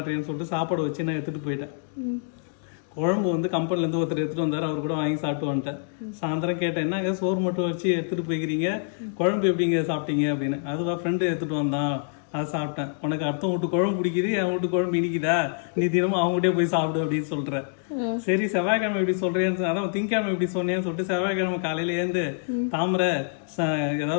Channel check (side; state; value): right; silent; digital silence